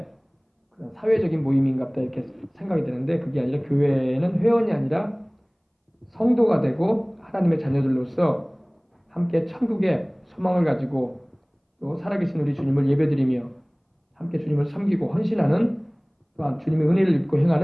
그런 사회적인 모임인갑다 이렇게 생각이 드는데, 그게 아니라 교회는 회원이 아니라 성도가 되고 하나님의 자녀들로서 함께 천국의 소망을 가지고 또 살아계신 우리 주님을 예배드리며 함께 주님을 섬기고 헌신하는, 또한 주님의 은혜를 입고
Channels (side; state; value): both; identical; correlation 1.00